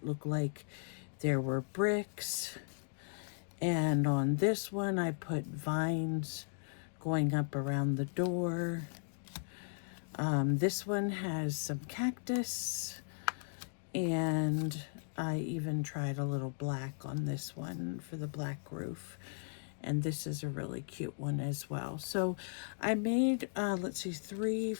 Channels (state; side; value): silent; right; digital silence